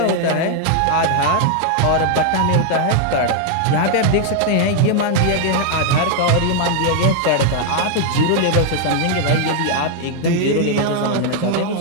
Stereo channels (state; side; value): different; both; correlation 0.00